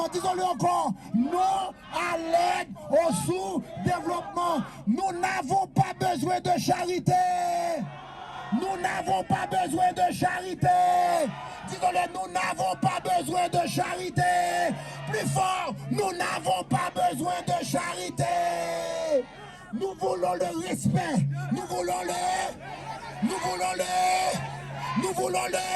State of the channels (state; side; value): identical; both; correlation 1.00